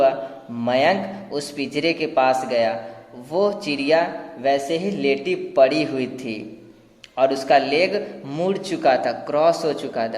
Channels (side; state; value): both; identical; correlation 1.00